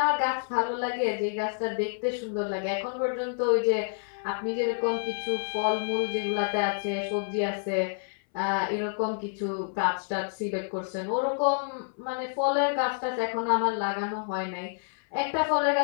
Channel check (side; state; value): right; silent; 59 dB below the other